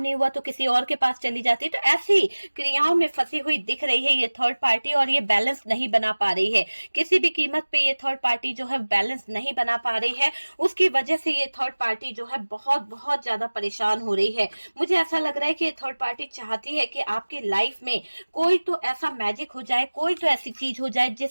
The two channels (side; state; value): both; inverted; correlation -1.00